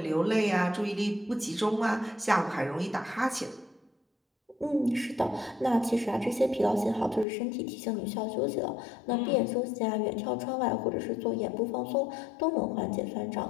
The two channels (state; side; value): drops out; right; at 7.2 s